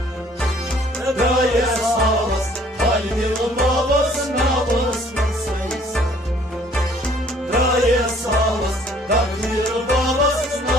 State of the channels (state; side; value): normal; both; correlation 0.58